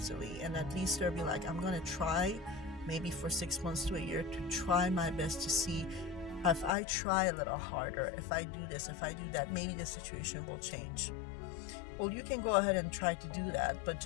and at least they'll be like, I'm gonna try, maybe for 6 months to a year, to try my best to see if I try a little harder, if I do this, if I do that, maybe the situation will change. Well, you can go ahead and try to do that, but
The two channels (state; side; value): drops out; right; at 6.8 s